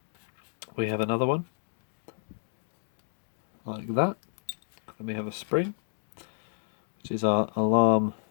we have another one like that. Then we have a spring, which is our alarm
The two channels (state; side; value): silent; right; digital silence